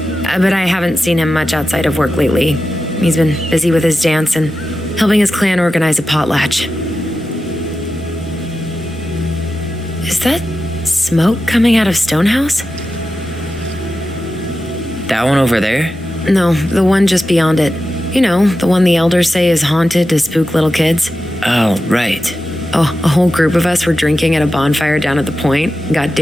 But I haven't seen him much outside of work lately. He's been busy with his dance and helping his clan organize a potlatch. Is that smoke coming out of Stonehouse? That one over there? No, the one just beyond it. You know, the one the elders say is haunted to spook little kids. Oh, right. Oh, a whole group of us were drinking at a bonfire down at the point, got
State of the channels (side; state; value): both; normal; correlation 0.92